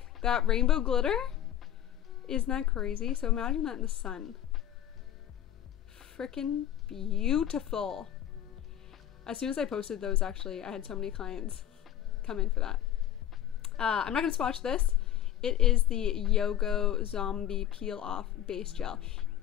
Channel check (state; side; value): quieter; right; 11.2 dB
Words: that rainbow glitter? Isn't that crazy? So imagine that in the sun. Freaking beautiful. As soon as I posted those, actually, I had so many clients come in for that. I'm not gonna swatch this. It is the Yogo Zombie Peel Off Base Gel.